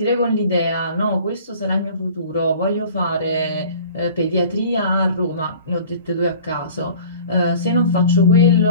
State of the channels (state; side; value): inverted; both; correlation -0.45